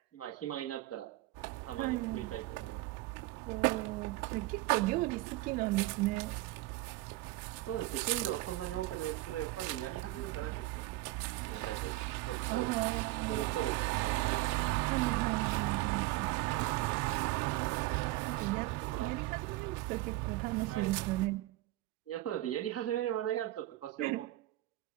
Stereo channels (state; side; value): quieter; left; 17.9 dB